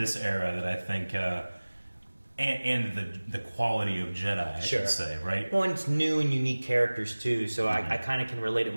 era that I think, and the quality of Jedi, I should say, right? Well, and it's new and unique characters too, so I kind of can relate it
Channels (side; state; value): both; inverted; correlation -1.00